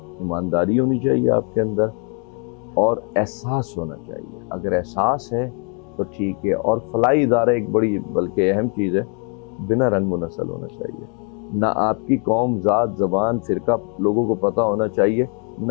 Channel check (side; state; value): right; quieter; 36.3 dB